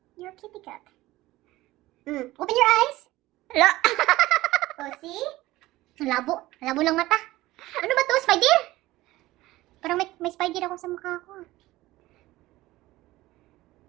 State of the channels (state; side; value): quieter; left; 17.6 dB